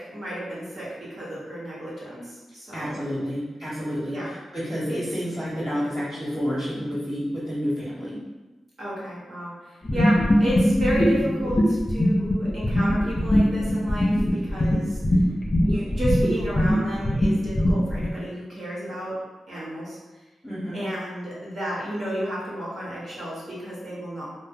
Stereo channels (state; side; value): normal; both; correlation 0.95